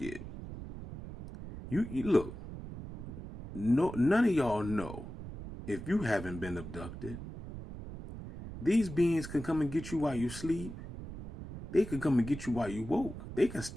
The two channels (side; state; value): right; noise; rumble, 11 dB below the sound